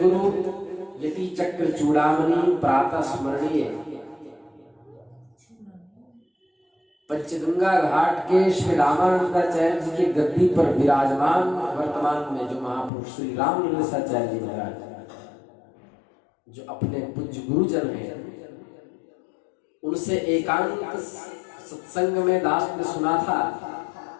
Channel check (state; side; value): drops out; right; at 12.9 s